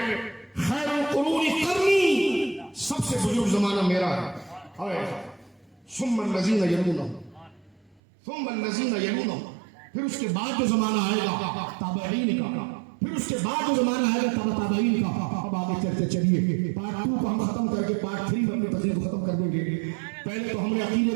خیر القرون قرنی، سب سے بزرگ زمانہ میرا ہے، ثم الذین یلونہم ثم الذین یلونہم، پھر اس کے بعد جو زمانہ آئے گا تابعین کا، پھر اس کے بعد جو زمانہ آئے گا تابعین کا۔ اب آگے چلتے چلیے، پارٹ 2 کو ہم ختم کر کے پارٹ 3 میں اپنی تقریر کو ختم کر دیں گے۔ پہلے تو ہم نے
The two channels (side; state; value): left; drops out; at 8.0 s